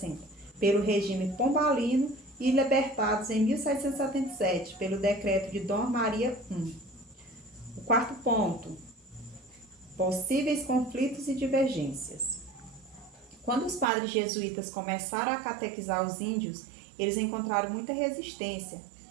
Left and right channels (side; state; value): left; drops out; at 13.9 s